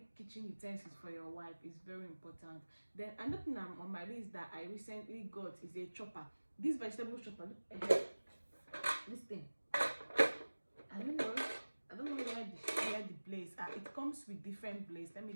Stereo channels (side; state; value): both; inverted; correlation -1.00